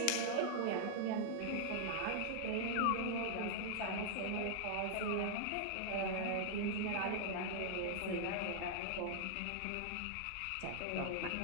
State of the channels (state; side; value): different; both; correlation 0.00